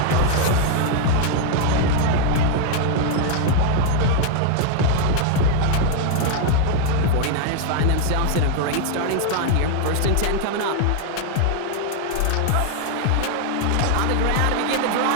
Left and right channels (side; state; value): both; different; correlation 0.00